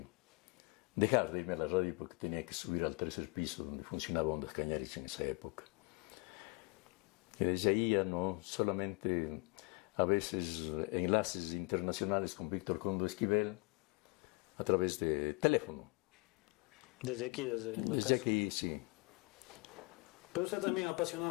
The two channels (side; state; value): right; quieter; 29.1 dB